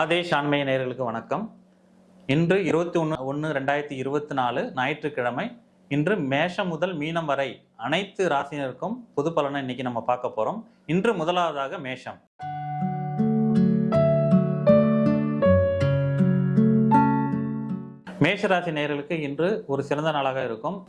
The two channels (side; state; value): both; identical; correlation 1.00